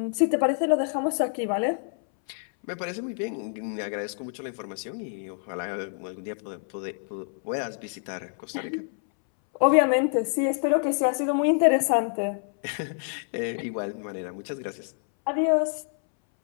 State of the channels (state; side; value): silent; right; 60 dB below the other